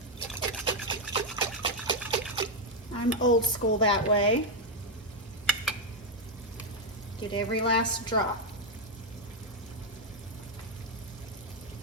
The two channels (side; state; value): both; normal; correlation 0.01